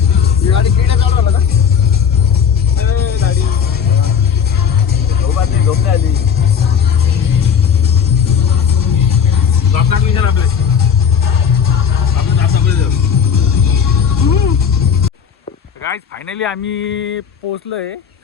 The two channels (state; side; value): quieter; right; 7.3 dB